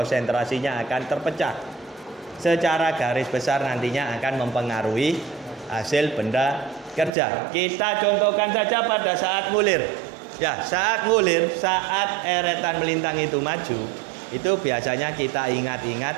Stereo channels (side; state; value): left; drops out; at 7.1 s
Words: akan terpecah. Secara garis besar nantinya akan mempengaruhi hasil benda kerja. Kita contohkan saja pada saat ngulir. Ya, saat ngulir, saat eretan melintang itu maju, itu biasanya kita ingat-ingat